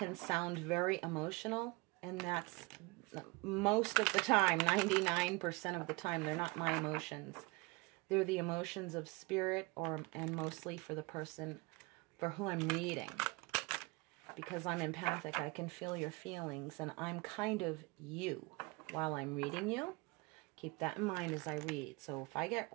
sound very emotional, and that's most of the time, 99% of the time, they're not my emotions. They're the emotions of Spirit, and mostly for the person for who I'm reading. Because I'm empathic, I can feel your feelings, and I'm kind of you while I'm reading you. Keep that in mind as I read. So if I get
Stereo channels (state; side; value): quieter; left; 26.0 dB